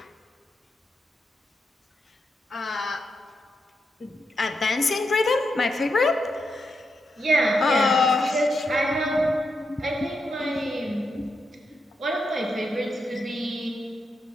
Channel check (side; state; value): both; normal; correlation 0.84